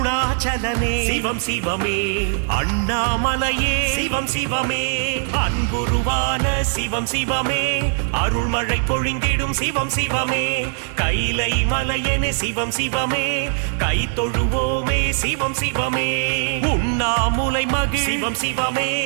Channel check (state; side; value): silent; left; digital silence